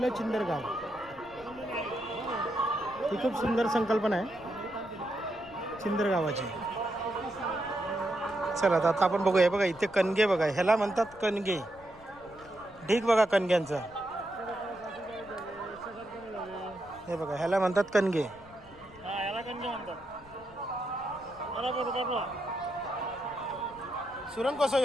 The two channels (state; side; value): noise; left; rumble, 23 dB below the sound